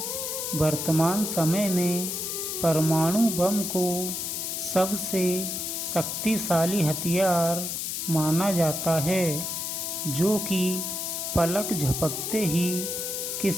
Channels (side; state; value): left; noise; hiss, 3 dB below the sound